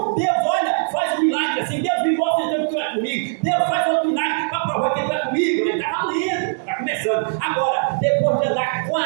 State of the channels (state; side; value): silent; left; digital silence